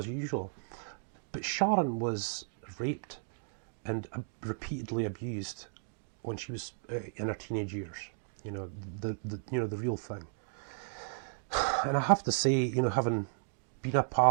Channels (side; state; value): left; silent; digital silence